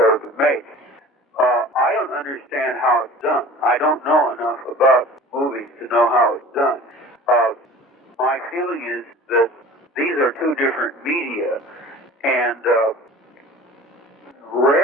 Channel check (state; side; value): normal; both; correlation 0.42